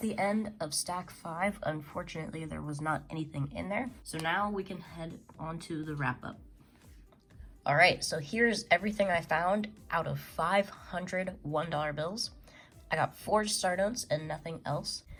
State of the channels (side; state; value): both; identical; correlation 1.00